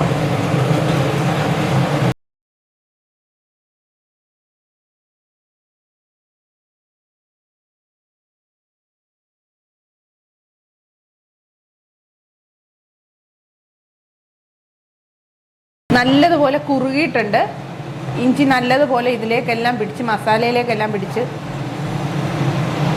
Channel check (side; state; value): both; identical; correlation 1.00